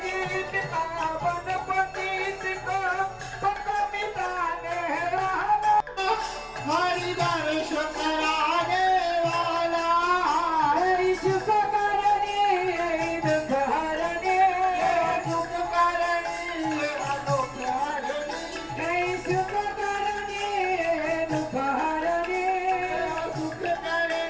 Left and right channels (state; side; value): identical; both; correlation 1.00